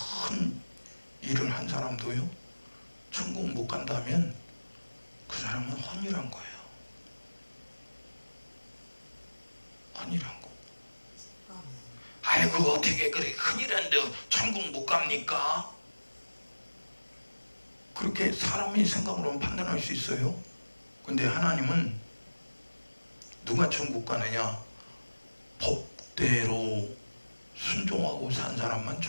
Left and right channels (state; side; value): inverted; both; correlation -1.00